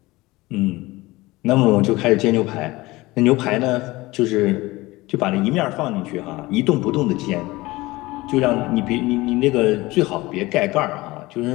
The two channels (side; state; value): right; quieter; 20.4 dB